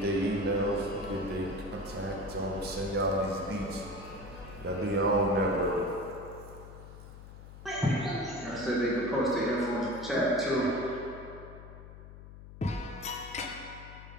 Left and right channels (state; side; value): noise; left; hum, 15 dB below the sound